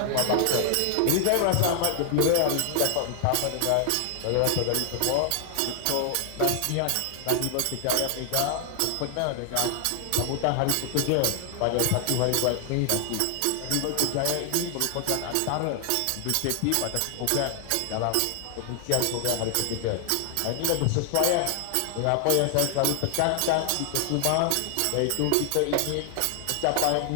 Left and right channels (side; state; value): both; different; correlation 0.00